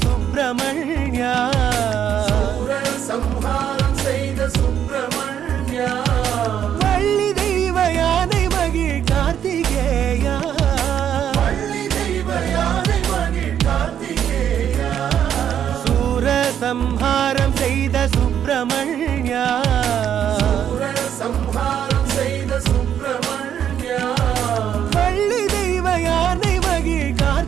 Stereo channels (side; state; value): left; quieter; 9.4 dB